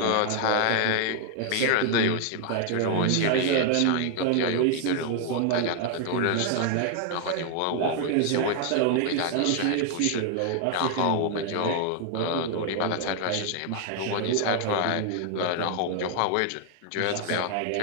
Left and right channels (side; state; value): both; different; correlation 0.00